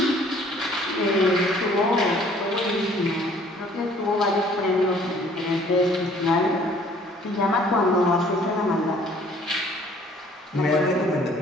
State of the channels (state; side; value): normal; both; correlation 0.57